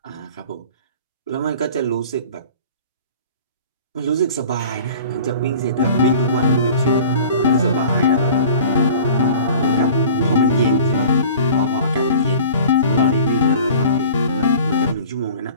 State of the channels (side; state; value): both; inverted; correlation -0.44